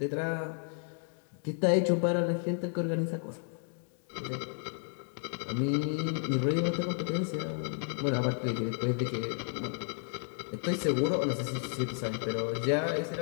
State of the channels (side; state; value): right; silent; 56 dB below the other